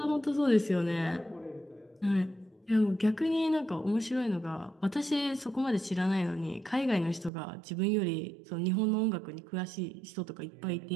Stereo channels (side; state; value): left; drops out; at 7.3 s